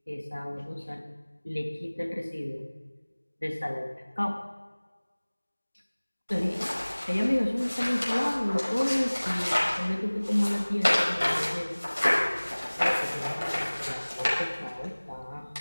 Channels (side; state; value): both; inverted; correlation -1.00